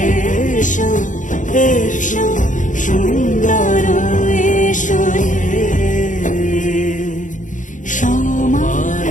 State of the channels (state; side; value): late; right; 0.37 ms